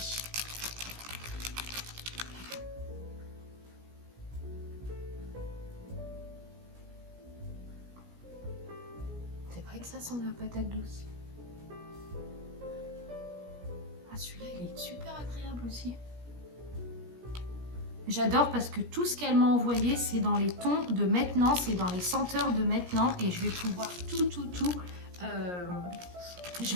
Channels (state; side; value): late; left; 17 ms